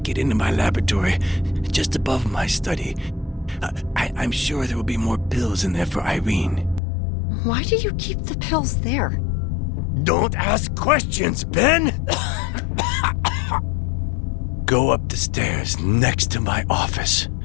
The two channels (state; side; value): drops out; right; at 6.8 s